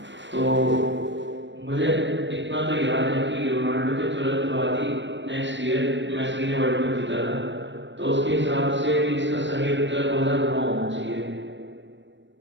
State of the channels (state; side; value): late; left; 0.53 ms